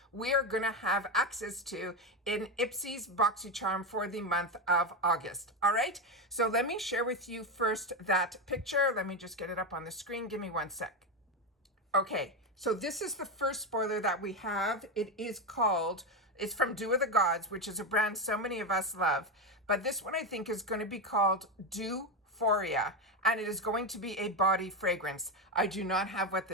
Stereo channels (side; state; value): both; normal; correlation 0.12